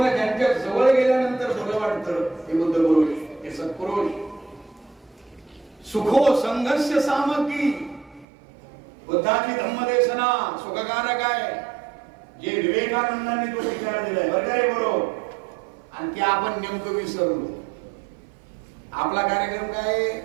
ज्यांच्या जवळ गेल्यानंतर बरं वाटतं हे बुद्ध पुरुष, हे सत्पुरुष. सुखो संघस्य सामग्री. बुद्धाची धम्मदेशना सुखकारक आहे, जे विवेकानंदांनी तो विचार दिलाय बरं का रे बरोबर. आणि ते आपण नेमकं विसरलो. आपला कार्यक्रम काय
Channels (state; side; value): drops out; left; at 8.2 s